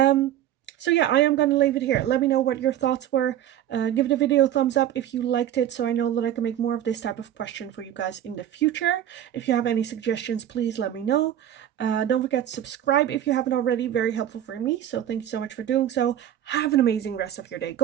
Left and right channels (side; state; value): left; quieter; 11.3 dB